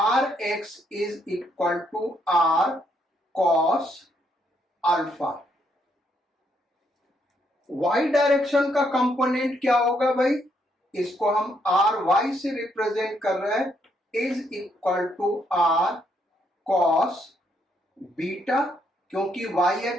x is equal to r cos alpha. Y direction का कंपोनेंट क्या होगा भाई, इसको हम आर वाई से रिप्रेजेंट कर रहे हैं, is equal to r cos beta, क्योंकि वाई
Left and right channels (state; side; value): normal; both; correlation 0.74